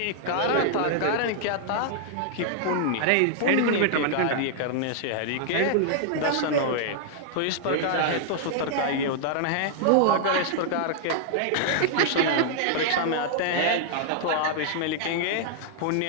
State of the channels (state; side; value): different; both; correlation -0.01